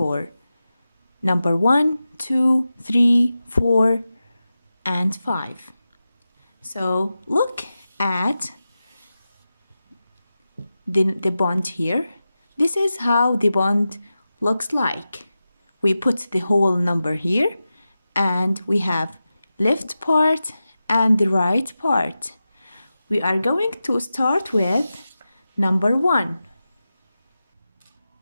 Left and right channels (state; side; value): inverted; both; correlation -0.93